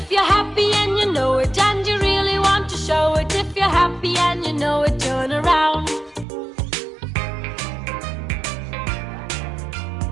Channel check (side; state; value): left; drops out; at 6.2 s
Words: you're happy and you know it, and you really want to show it. If you're happy and you know it, turn around.